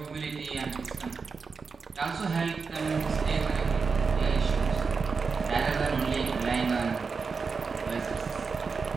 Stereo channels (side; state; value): left; quieter; 5.0 dB